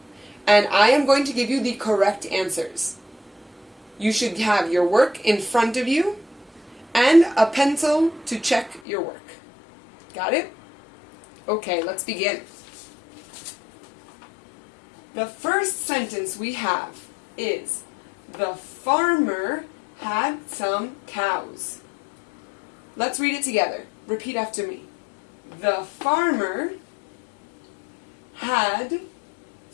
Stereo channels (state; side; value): drops out; right; at 8.8 s